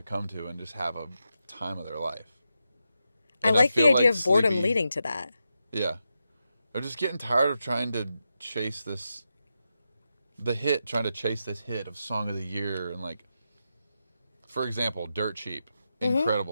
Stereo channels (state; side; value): inverted; both; correlation -0.87